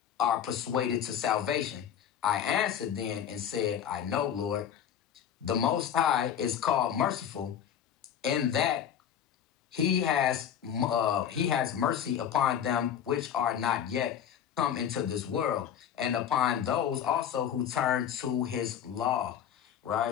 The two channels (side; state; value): right; quieter; 9.2 dB